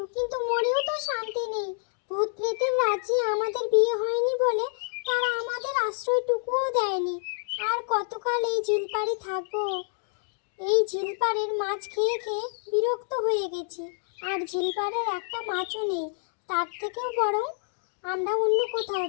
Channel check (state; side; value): silent; right; digital silence